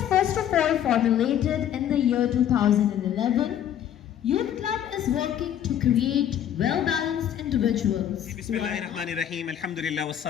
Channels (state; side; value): quieter; right; 10.3 dB